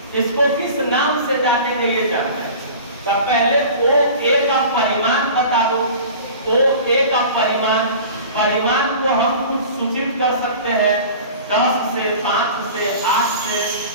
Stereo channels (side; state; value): both; inverted; correlation -0.39